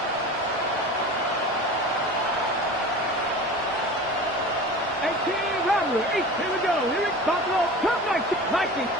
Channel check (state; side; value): normal; both; correlation 0.35